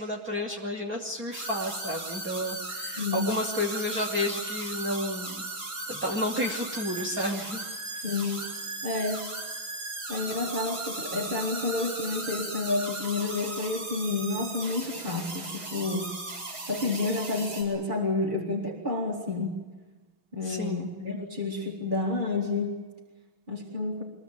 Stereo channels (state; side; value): late; left; 6.2 ms